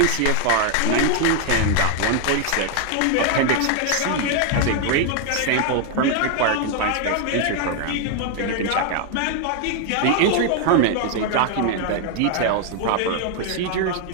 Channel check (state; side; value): different; both; correlation 0.00